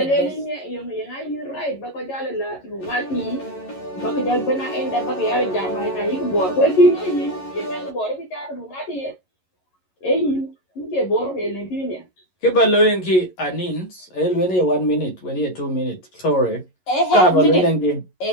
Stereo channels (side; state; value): right; late; 11 ms